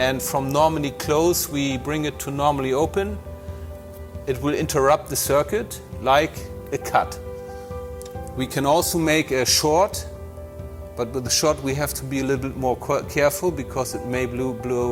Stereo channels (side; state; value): both; identical; correlation 1.00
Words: from normally closed we bring it to normally open. It will interrupt the circuit like a cut. We can also make a short, but with the short we have to be a little bit more careful because it may